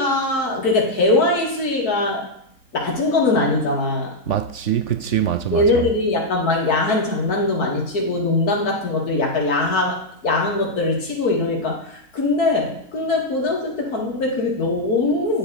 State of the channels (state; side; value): late; right; 4.6 ms